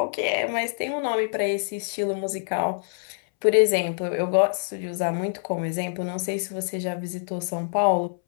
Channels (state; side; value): silent; right; 61 dB below the other